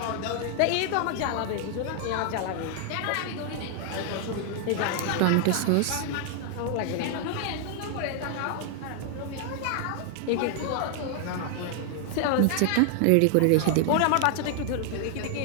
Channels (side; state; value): both; different; correlation 0.00